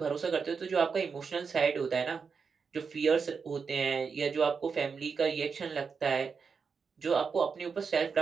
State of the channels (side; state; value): left; quieter; 5.6 dB